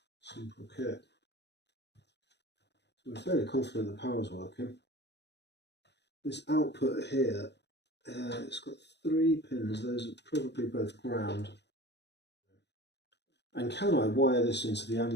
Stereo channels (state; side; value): late; right; 0.50 ms